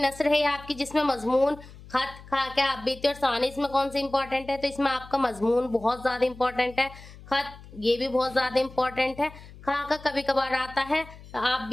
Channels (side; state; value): left; noise; hum, 19 dB below the sound